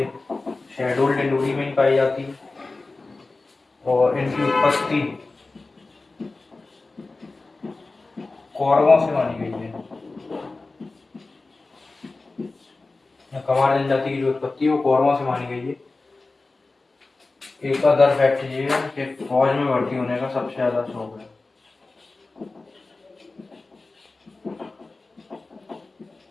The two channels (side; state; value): right; quieter; 3.5 dB